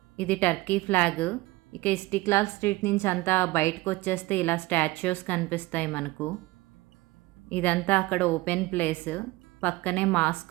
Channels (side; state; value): left; quieter; 20.3 dB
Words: ఇది టర్కీ ఫ్లాగ్. ఇక ఇస్టిక్లాల్ స్ట్రీట్ నుంచి అంతా బయటకు వచ్చేస్తే ఇలా స్టాచ్యూస్ కనిపిస్తాయి మనకు. ఇదంతా అక్కడ ఓపెన్ ప్లేస్, పక్కనే